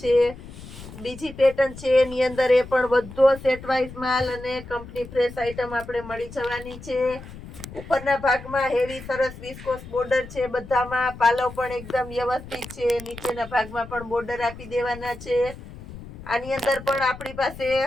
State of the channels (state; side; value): noise; left; rumble, 15 dB below the sound